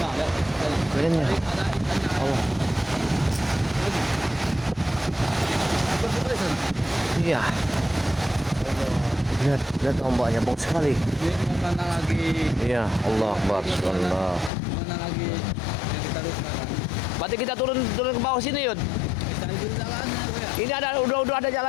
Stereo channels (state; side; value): drops out; right; at 14.5 s